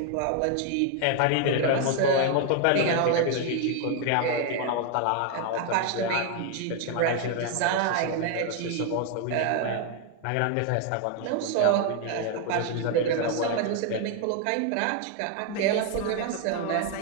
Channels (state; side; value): different; both; correlation 0.01